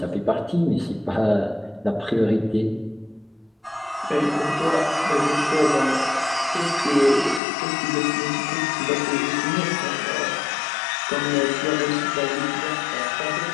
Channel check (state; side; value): drops out; right; at 7.4 s